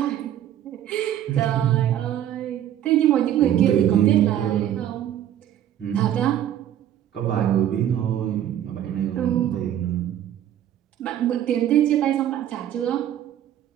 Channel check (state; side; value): quieter; left; 11.1 dB